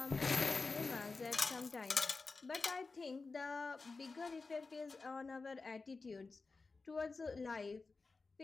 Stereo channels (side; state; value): right; quieter; 4.1 dB